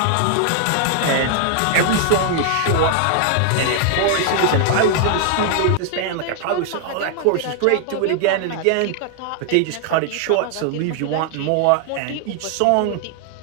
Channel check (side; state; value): both; different; correlation 0.00